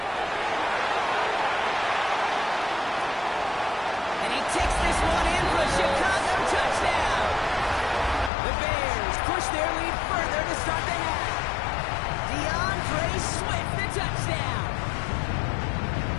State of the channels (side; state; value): right; drops out; at 8.3 s